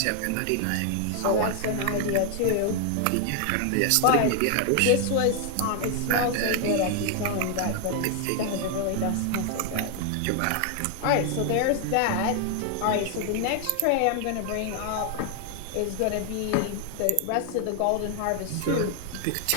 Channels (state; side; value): different; both; correlation 0.00